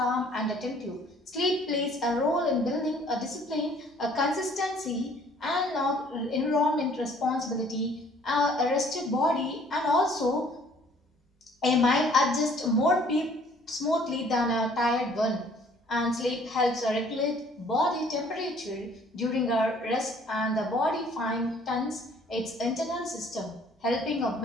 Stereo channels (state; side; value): normal; both; correlation 0.58